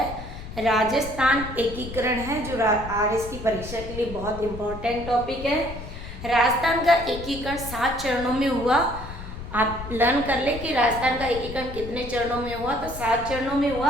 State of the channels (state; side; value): noise; left; rumble, 11 dB below the sound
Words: राजस्थान एकीकरण है, जो आरएस की परीक्षा के लिए बहुत इम्पोर्टेंट टॉपिक है। राजस्थान का एकीकरण 7 चरणों में हुआ। आप लर्न कर ले कि राजस्थान का एकीकरण कितने चरणों में हुआ, तो 7 चरणों में